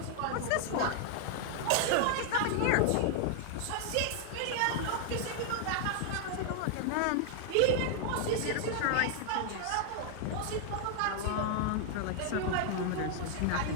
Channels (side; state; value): both; different; correlation 0.00